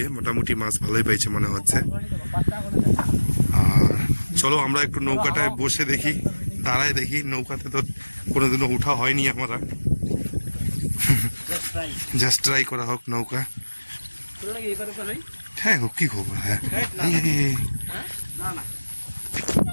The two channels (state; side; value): inverted; both; correlation -1.00